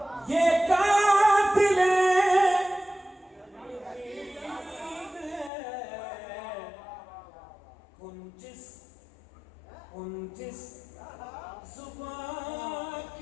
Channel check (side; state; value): right; drops out; at 5.5 s